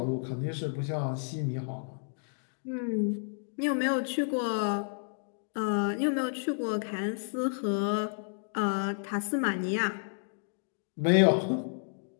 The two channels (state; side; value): silent; right; digital silence